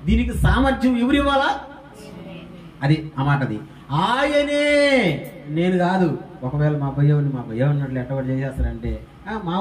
దీనికి సామర్థ్యం ఎవరు ఇవ్వాలా? అది ఆ మాటది. ఆయనే, నేను కాదు. ఒకవేళ మా భయ్య ఉన్నట్లు ఎట్టబడి చేసేస్తారంటే మా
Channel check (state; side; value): identical; both; correlation 1.00